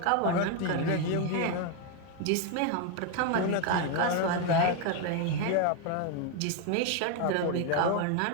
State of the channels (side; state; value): both; different; correlation 0.01